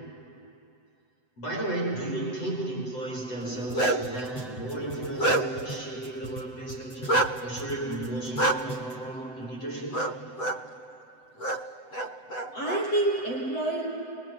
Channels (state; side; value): late; right; 7.9 ms